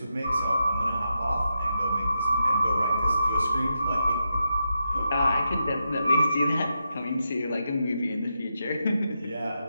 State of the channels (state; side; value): inverted; both; correlation -0.86